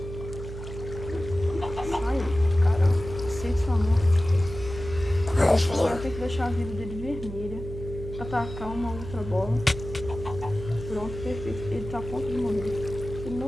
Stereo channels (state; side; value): noise; right; hum, 10 dB below the sound